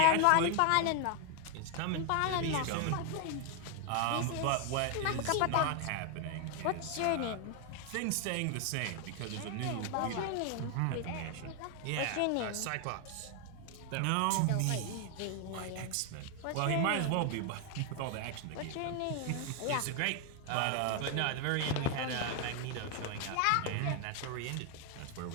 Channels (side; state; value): both; different; correlation 0.01